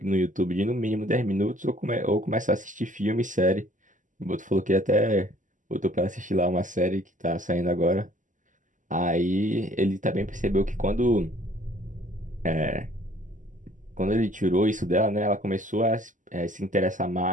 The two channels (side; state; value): left; late; 0.37 ms